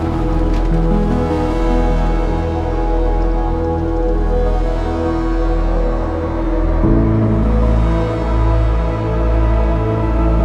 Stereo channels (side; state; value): both; identical; correlation 1.00